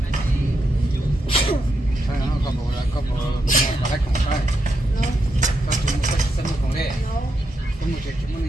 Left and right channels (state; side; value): normal; both; correlation 0.82